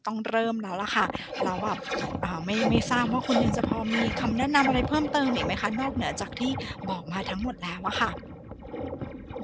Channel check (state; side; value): identical; both; correlation 1.00